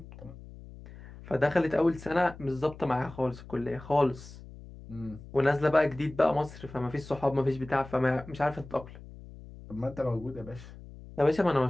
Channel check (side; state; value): left; noise; hum, 16 dB below the sound